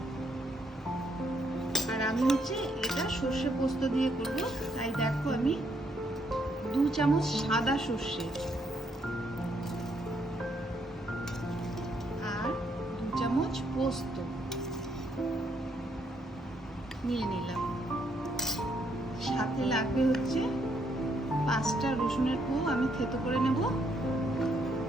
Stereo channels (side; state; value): both; normal; correlation 0.73